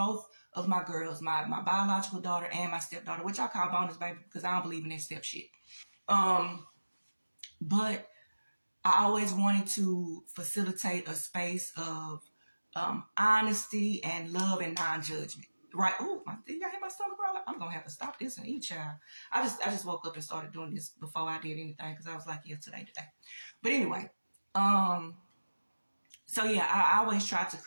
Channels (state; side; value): inverted; both; correlation -1.00